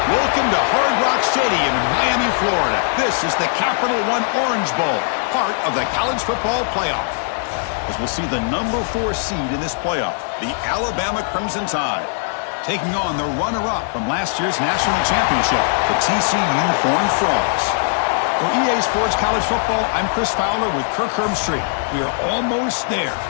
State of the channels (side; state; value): right; silent; digital silence